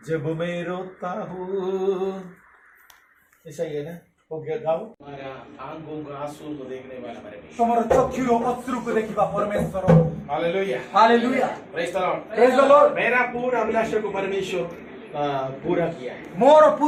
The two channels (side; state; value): both; identical; correlation 1.00